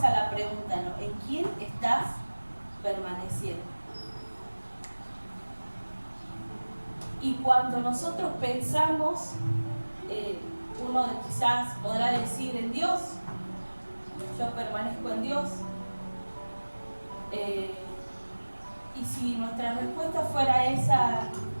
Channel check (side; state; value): both; inverted; correlation -1.00